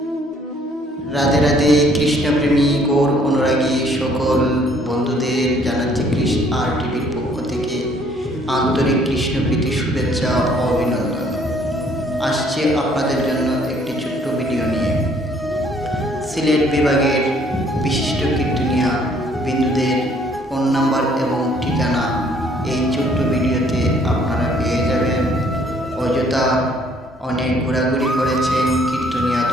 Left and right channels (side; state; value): both; normal; correlation 0.62